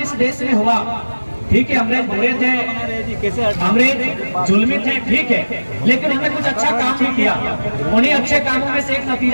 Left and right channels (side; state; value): both; inverted; correlation -1.00